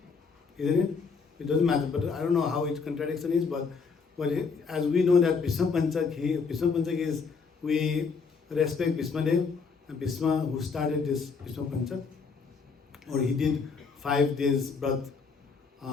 Isn't it? It doesn't matter, but I don't know how its contradiction is, but as we know that Vishwa Panchak is, we respect Bhismadev, and Bhisma who started this Vishwa Panchak, or he did 5 days birth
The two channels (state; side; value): quieter; right; 5.2 dB